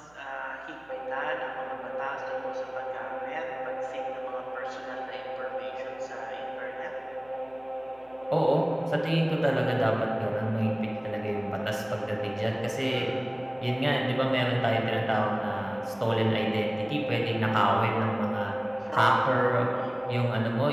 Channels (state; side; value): noise; right; hum, 28 dB below the sound